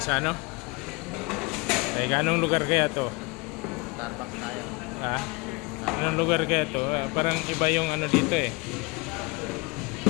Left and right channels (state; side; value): quieter; right; 26.6 dB